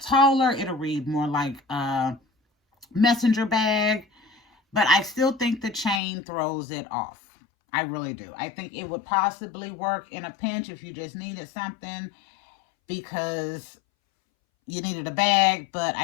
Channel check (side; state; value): right; drops out; at 6.0 s